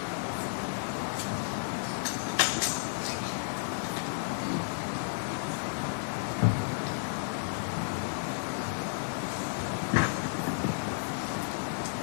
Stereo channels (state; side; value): silent; right; digital silence